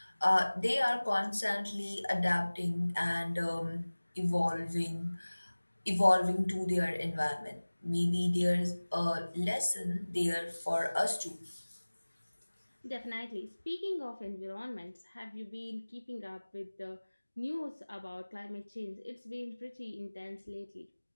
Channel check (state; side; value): inverted; both; correlation -1.00